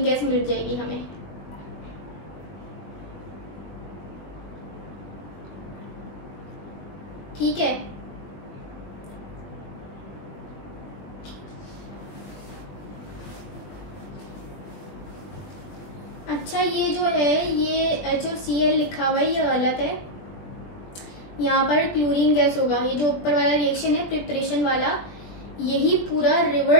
गैस मिल जाएगी हमें। ठीक है, अच्छा ये जो है ये HCl लिखा हुआ है ये गलत है, यहाँ पर क्लोरीन गैस होगा। ये जो ऊपर वाला रिएक्शन है प्रिपरेशन वाला, यही पूरा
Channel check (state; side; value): late; right; 21 ms